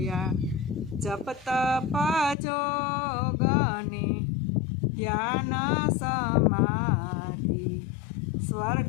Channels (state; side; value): drops out; right; at 2.4 s